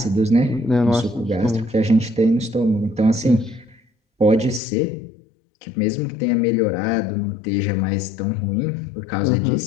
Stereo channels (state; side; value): drops out; right; at 4.6 s